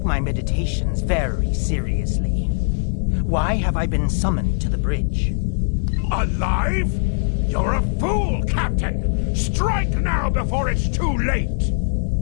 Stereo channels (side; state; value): right; silent; digital silence